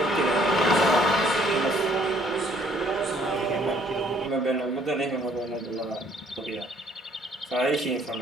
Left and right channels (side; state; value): both; normal; correlation 0.62